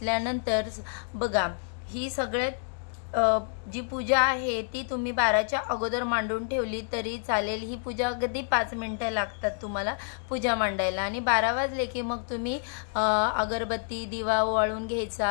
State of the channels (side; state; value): right; silent; 59 dB below the other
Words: बघा, ही सगळ्यात जी पूजा आहे ती तुम्ही 12च्या अगोदर मांडून ठेवली तरी चालेल। ही पूजा अगदी 5 मिनिटं लागतात तुम्हाला पूजा मांडायला आणि 12 वाजले की मग तुम्ही अगरबत्ती दिवा ओवाळून